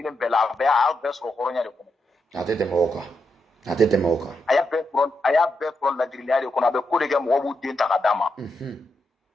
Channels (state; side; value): normal; both; correlation 0.83